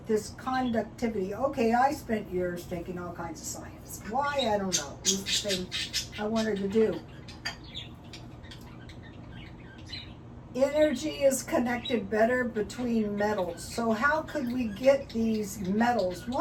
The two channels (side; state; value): both; identical; correlation 1.00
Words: this conductivity. Okay, I spent years taking all kinds of science. Why? I don't know. It was the thing I wanted to do. Energy is connected better between metals. So how could we get these metals?